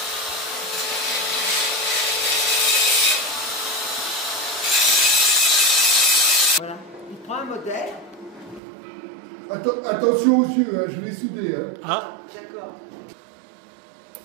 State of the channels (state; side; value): drops out; left; at 8.6 s